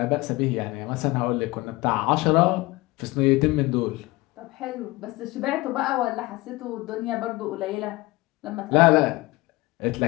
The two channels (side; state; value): right; quieter; 20.7 dB